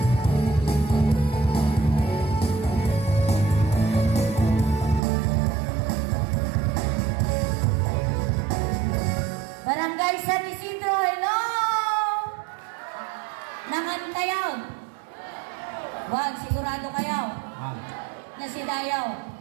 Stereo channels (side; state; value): left; drops out; at 5.0 s